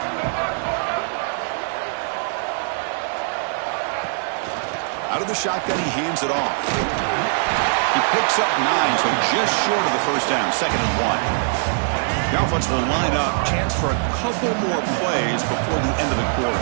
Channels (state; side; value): silent; left; digital silence